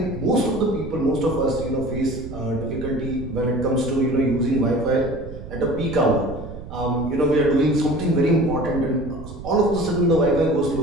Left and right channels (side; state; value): right; noise; rumble, 12 dB below the sound